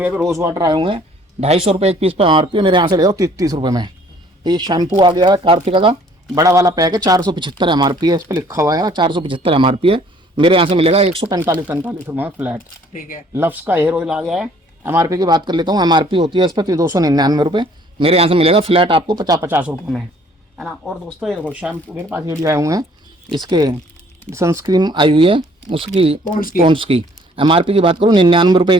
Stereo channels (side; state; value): both; normal; correlation 0.58